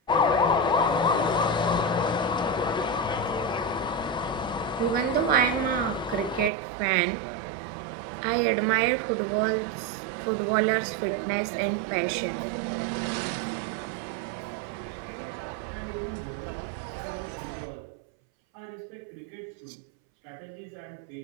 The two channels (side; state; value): left; drops out; at 6.5 s